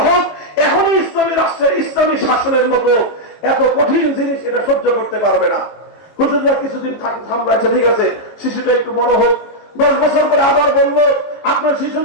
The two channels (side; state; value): right; late; 18 ms